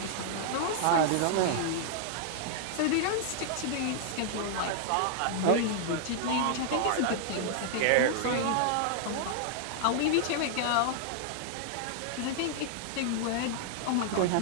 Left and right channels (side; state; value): both; different; correlation -0.01